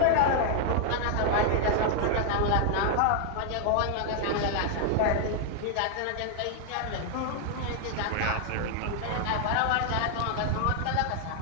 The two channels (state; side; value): different; both; correlation 0.00